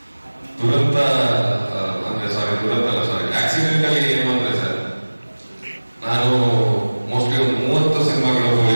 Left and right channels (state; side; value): inverted; both; correlation -1.00